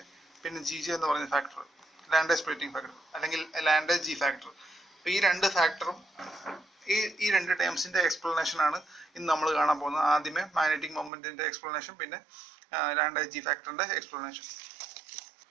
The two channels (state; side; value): drops out; left; at 11.1 s